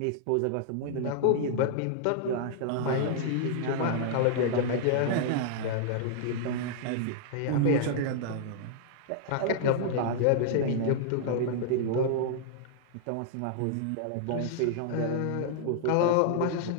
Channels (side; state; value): both; different; correlation -0.01